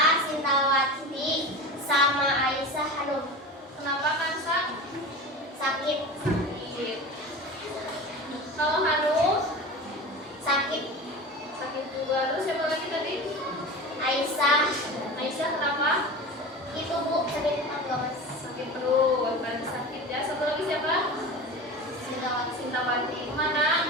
Sintawati, sama Aisyah Hanum. Kenapa Kansa? Sakit. Sakit. Kalau Hanum? Sakit. Sakit juga. Terus siapa lagi tadi? Aisyah. Aisyah kenapa? Itu Bu, sakit perut. Sakit perut. Berarti sakit ya. Satu lagi siapa? Sintawati. Sintawati.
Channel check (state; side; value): normal; both; correlation 0.31